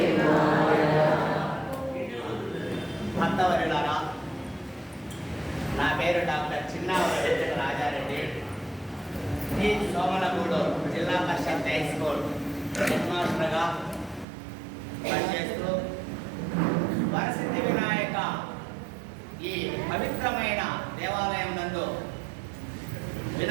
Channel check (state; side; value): drops out; left; at 14.2 s